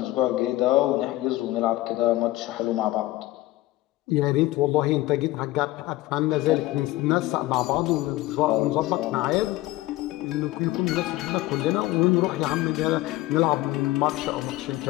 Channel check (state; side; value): quieter; right; 17.3 dB